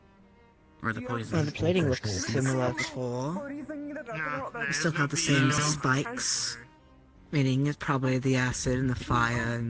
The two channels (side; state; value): both; identical; correlation 1.00